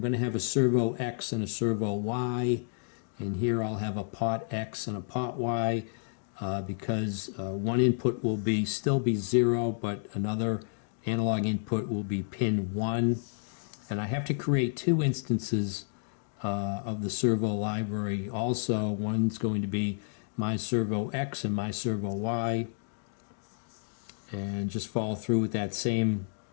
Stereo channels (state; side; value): silent; right; digital silence